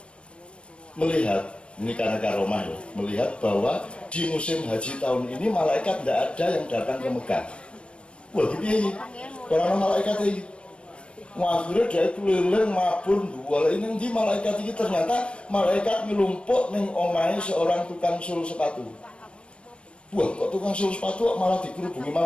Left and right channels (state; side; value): late; right; 0.059 ms